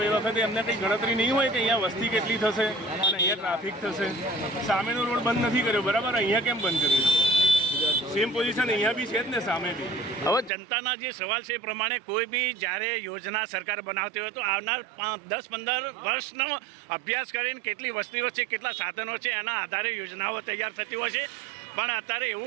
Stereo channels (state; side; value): drops out; left; at 10.5 s